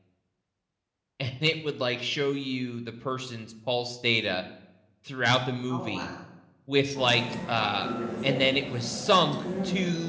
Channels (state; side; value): identical; both; correlation 1.00